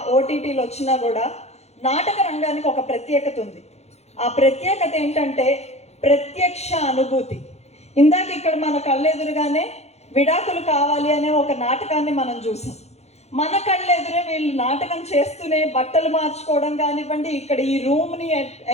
ఓటీటీలు వచ్చినా కూడా నాటక రంగానికి ఒక ప్రత్యేకత ఉంది. ఆ ప్రత్యేకత ఏంటంటే ప్రత్యక్ష అనుభూతి. ఇందాక ఇక్కడ మన కళ్ళెదురుగానే విడాకులు కావాలి అనే ఒక నాటకాన్ని మనం చూసాం. మన కళ్ళెదురే వీళ్ళు నాటకం చేస్తూనే బట్టలు మార్చుకోవడం కానివ్వండి, ఇక్కడ ఈ రూమ్ని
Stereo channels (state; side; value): late; right; 0.31 ms